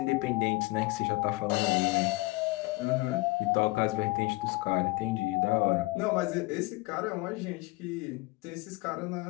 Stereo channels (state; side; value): quieter; right; 23.6 dB